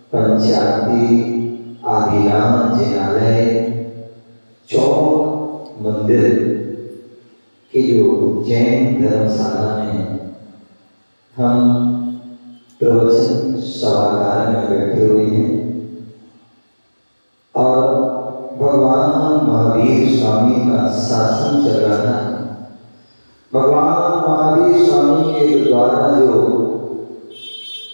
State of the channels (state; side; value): inverted; both; correlation -1.00